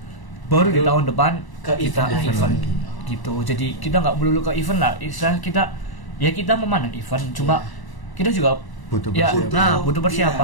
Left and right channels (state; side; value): late; right; 1.0 ms